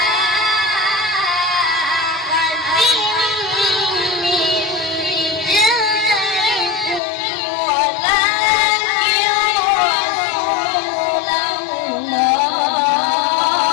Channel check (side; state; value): right; drops out; at 7.0 s